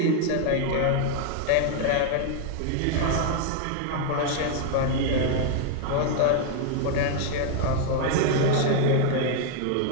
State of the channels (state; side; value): different; both; correlation 0.00